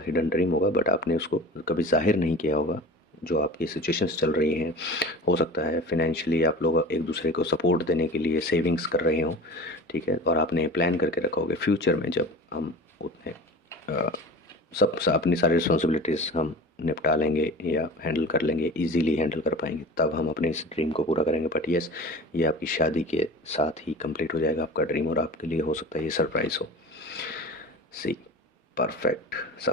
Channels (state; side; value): normal; both; correlation 0.36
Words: हिडन ड्रीम होगा बट आपने उसको कभी जाहिर नहीं किया होगा। जो आपकी सिचुएशंस चल रही हैं, हो सकता है फाइनेंशियली आप लोग एक दूसरे को सपोर्ट देने के लिए सेविंग्स कर रहे हों, ठीक है। और आपने प्लान करके रखा होगा फ्यूचर में जब हम उतने अपनी सारी रिस्पॉन्सिबिलिटीज़ हम निपटा लेंगे या हैंडल कर लेंगे, इजीली हैंडल कर पाएंगे, तब हम अपने इस ड्रीम को पूरा करेंगे। बट यस, ये आपकी शादी के साथ ही कंप्लीट हो जाएगा आपका ड्रीम, और आपके लिए हो सकता है ये सरप्राइज़ हो। See perfect